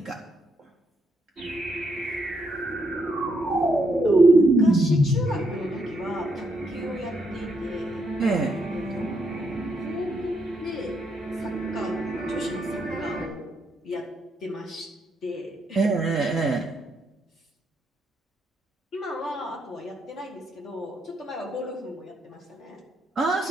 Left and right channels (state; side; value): normal; both; correlation 0.77